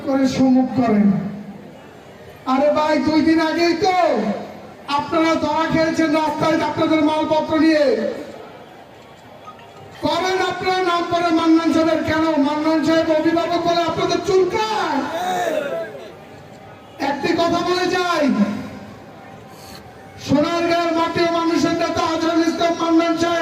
করে সমুক করেন। আরে ভাই 2 দিন আগেই তো আপনারা ধরা খেয়েছেন রাস্তায় আপনাদের মালপত্র নিয়ে। করেন আপনারা নাম করে মান্নান সাহেবের, কেন মান্নান সাহেব অভিভাবক বলে আপনাদের চুলকায়? একটি কথা বলে যাই, সোনারগাঁয়ের মাটিও মানুষের নেতা আজহারুল ইসলাম মান্নান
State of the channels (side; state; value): both; identical; correlation 1.00